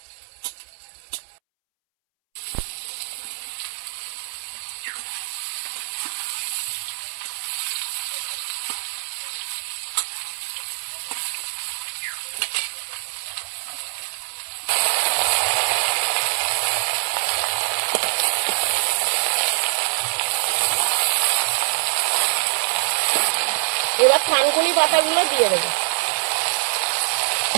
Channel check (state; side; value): silent; left; 63 dB below the other